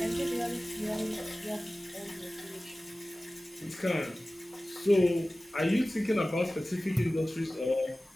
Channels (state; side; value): normal; both; correlation 0.97